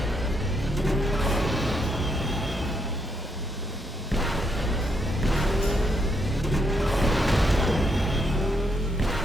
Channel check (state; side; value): normal; both; correlation 0.77